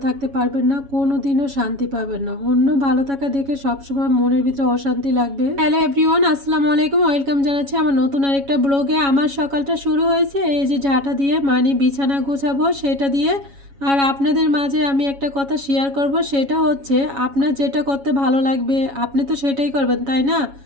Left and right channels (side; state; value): left; late; 7.2 ms